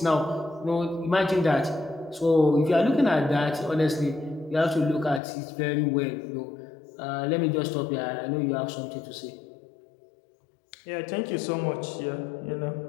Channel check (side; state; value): right; drops out; at 5.2 s